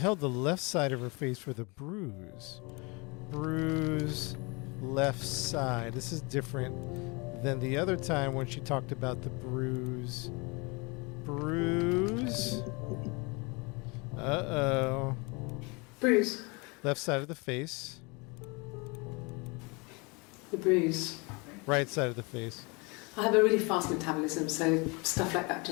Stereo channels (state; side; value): quieter; right; 28.7 dB